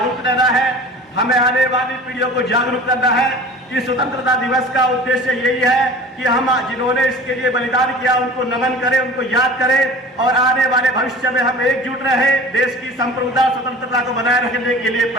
रहना है, हमें आने वाली पीढ़ियों को जागरूक करना है कि स्वतंत्रता दिवस का उद्देश्य यही है कि हम जिन्होंने इसके लिए बलिदान किया उनको नमन करें, उनको याद करें, और आने वाले भविष्य में हम एकजुट रहें, देश की संप्रभुता, स्वतंत्रता को बनाए रखने के लिए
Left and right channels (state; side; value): normal; both; correlation 0.41